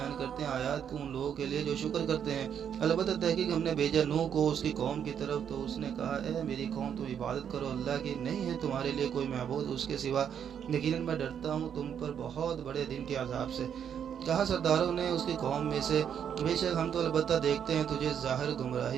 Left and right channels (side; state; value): left; quieter; 8.4 dB